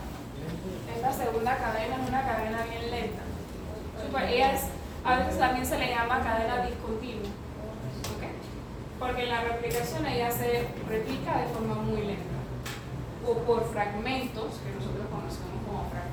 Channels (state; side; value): identical; both; correlation 1.00